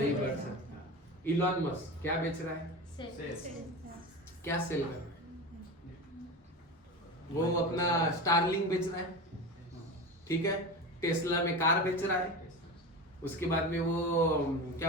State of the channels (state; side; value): normal; both; correlation 0.27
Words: बढ़ सकता। इलॉन मस्क क्या बेच रहा है? क्या सेल कर रहा है? वो अपना स्टारलिंक बेच रहा है, ठीक है, टेस्ला में कार बेच रहा है, उसके बाद में वो